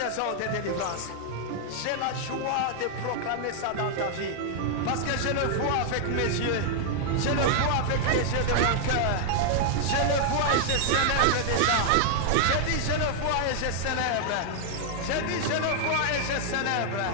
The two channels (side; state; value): both; different; correlation 0.00